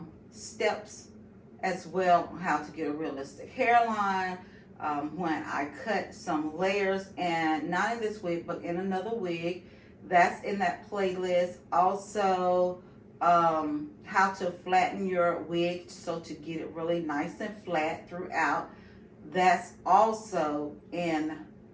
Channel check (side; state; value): both; identical; correlation 1.00